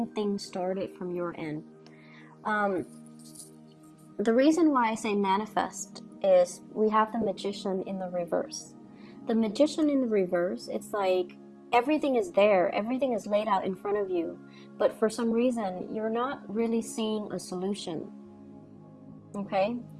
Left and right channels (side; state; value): both; identical; correlation 1.00